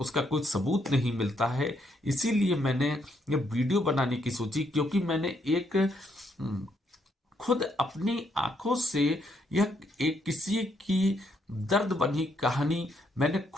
कोई सबूत नहीं मिलता है। इसीलिए मैंने ये वीडियो बनाने की सोची, क्योंकि मैंने एक खुद अपनी आंखों से यह एक किसी की दर्द बनी कहानी मैंने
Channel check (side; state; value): both; normal; correlation 0.74